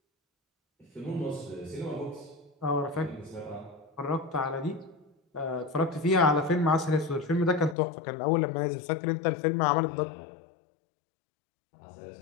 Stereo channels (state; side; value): drops out; right; at 7.8 s